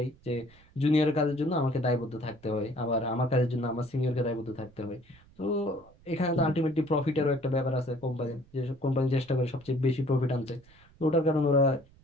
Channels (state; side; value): noise; right; rumble, 27 dB below the sound